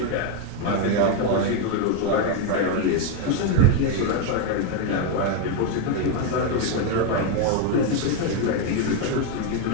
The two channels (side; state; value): both; different; correlation 0.02